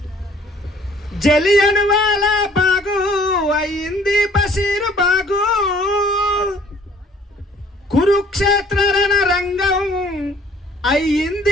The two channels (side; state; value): both; normal; correlation 0.57